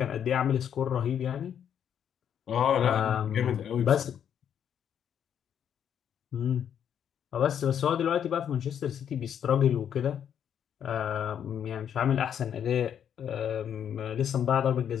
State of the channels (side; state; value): right; quieter; 8.9 dB